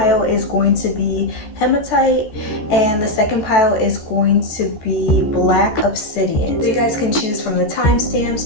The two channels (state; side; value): late; right; 14 ms